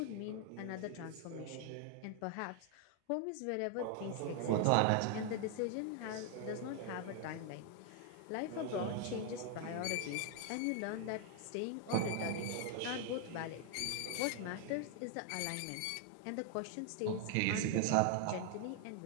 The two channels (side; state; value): both; different; correlation 0.00